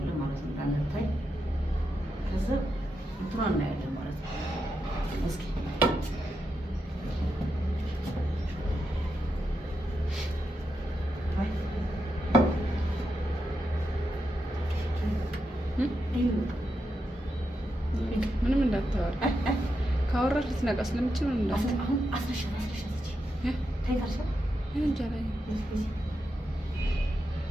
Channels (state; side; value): normal; both; correlation 0.85